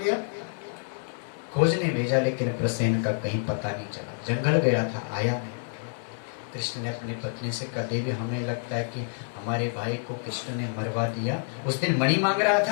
खोजने भेजा लेकिन प्रसेन का कहीं पता नहीं चला। जंगल गया था, आया नहीं। कृष्ण ने अपनी पत्नी से कहा, देवी हमें लगता है कि हमारे भाई को कृष्ण ने मरवा दिया। उस दिन मणि मांग रहा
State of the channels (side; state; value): right; silent; 57 dB below the other